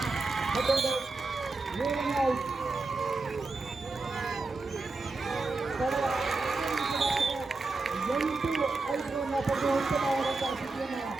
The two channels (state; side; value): quieter; left; 3.6 dB